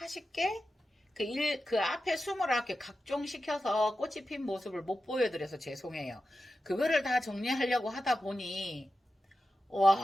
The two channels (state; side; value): normal; both; correlation 0.92